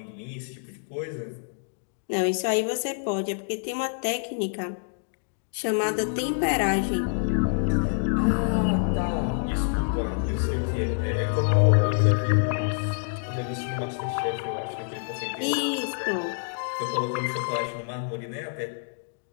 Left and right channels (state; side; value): silent; right; digital silence